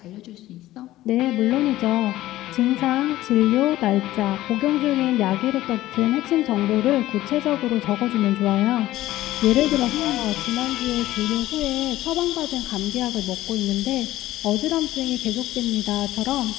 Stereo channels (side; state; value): right; quieter; 15.5 dB